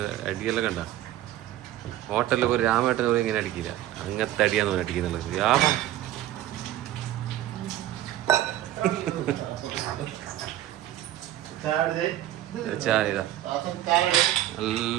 അടിയെല്ലാം കണ്ട. ഹോട്ടലിൽ ഒരു രാമേട്ടൻ പോലും ഇങ്ങനെ അടിക്കില്ല. അങ്ങനത്തെ അടിയാന്ന് പറഞ്ഞ് അടിക്കുന്നുള്ളത്. രാമ ചായ ഇതാ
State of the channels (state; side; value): quieter; left; 13.5 dB